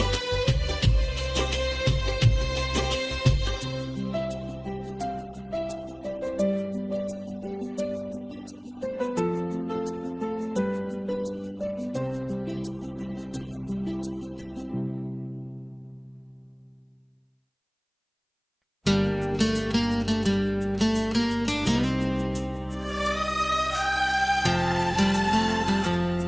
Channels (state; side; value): identical; both; correlation 1.00